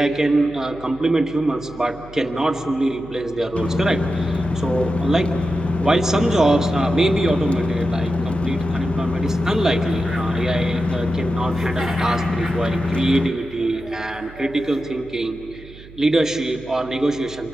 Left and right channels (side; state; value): right; noise; hum, 19 dB below the sound